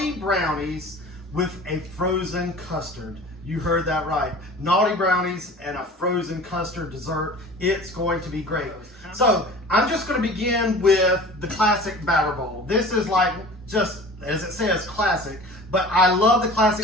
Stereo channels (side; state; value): both; normal; correlation 0.41